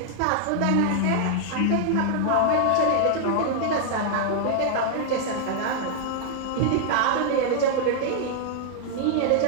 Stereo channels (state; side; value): different; both; correlation -0.01